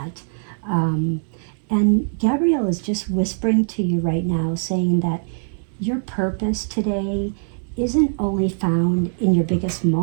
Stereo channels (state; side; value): silent; left; 64 dB below the other